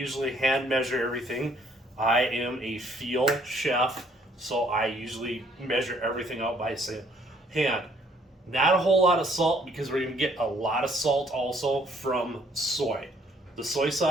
hand measure everything. I am a field chef, so I usually measure everything out by hand. Not a whole lot of salt because we're going to get a lot of salt also from soy. The soy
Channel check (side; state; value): both; normal; correlation 0.64